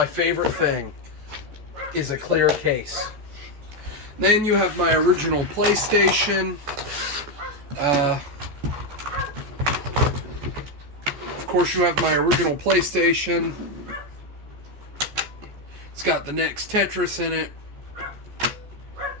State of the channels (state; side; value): late; left; 14 ms